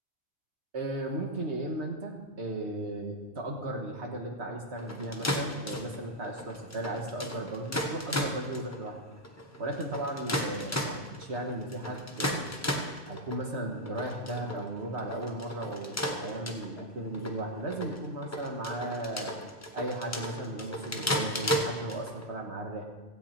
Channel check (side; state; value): both; normal; correlation 0.01